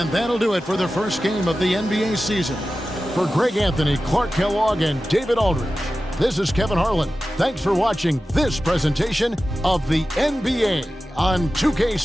that'll do it for the first game of the NBA season. For Greg Anthony, Clark Kellogg, and David Aldridge, this is Kevin Harlan. Thanks for watching this presentation of the NBA on 2K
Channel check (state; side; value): normal; both; correlation 0.94